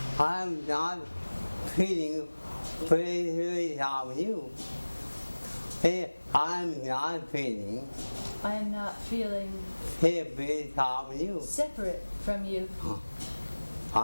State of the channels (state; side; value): inverted; both; correlation -1.00